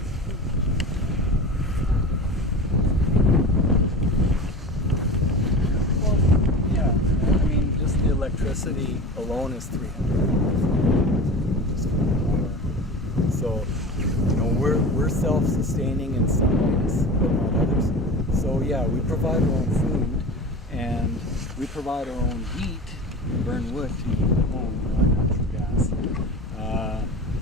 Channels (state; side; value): normal; both; correlation 0.32